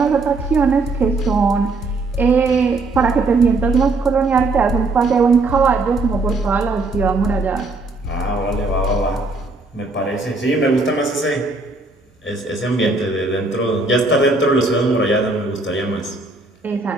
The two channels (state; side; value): quieter; left; 3.3 dB